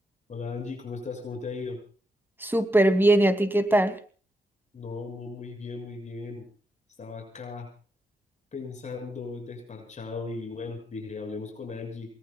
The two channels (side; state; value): both; normal; correlation 0.83